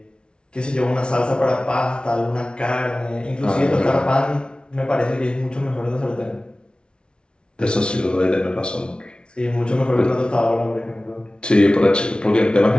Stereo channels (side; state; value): right; late; 0.056 ms